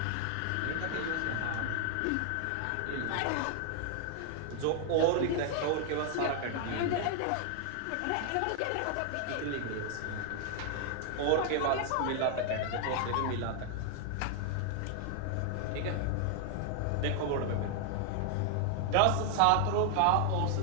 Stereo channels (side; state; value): both; different; correlation 0.00